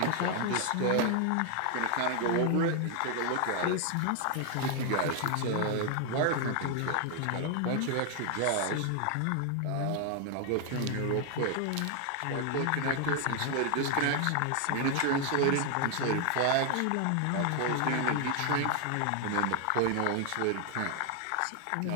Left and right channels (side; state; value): both; different; correlation 0.00